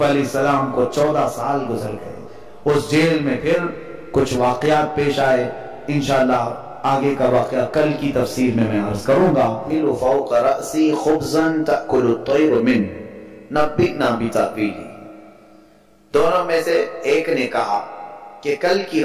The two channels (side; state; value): both; identical; correlation 1.00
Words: علیہ السلام کو 14 سال گزر گئے اس جیل میں۔ پھر کچھ واقعات پیش آئے، انشاءاللہ آگے کا واقعہ کل کی تفسیر میں عرض کروں گا۔ فوق رأسی خبزا تأکل الطیر من نبئنا بتأویلہ، دونوں میں سے ایک نے کہا کہ کل کی